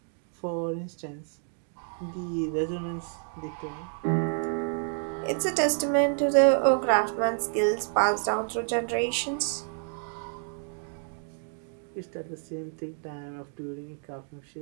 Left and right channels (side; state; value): left; silent; 58 dB below the other